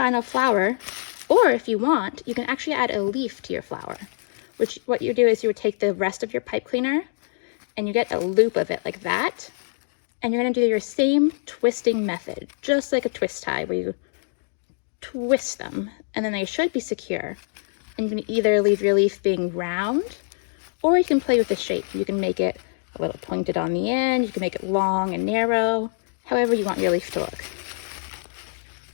flower, or if you want, you can actually add a leaf to your flower, which what you do is you would take the rest of your pipe cleaner and you get a loop of it like that, And you're going to do your same twisting method, just like a twist tie, where you twist them, and then they should be secure. And you can either leave your leaf being round, or you can play with the shape. You can make it a little pointed on the end, you can make it long and narrow, however you want your leaf to look.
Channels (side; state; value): right; silent; digital silence